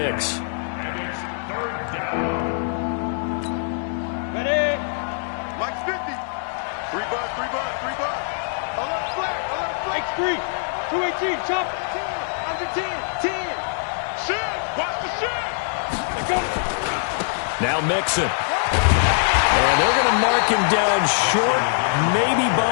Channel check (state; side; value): silent; right; 63 dB below the other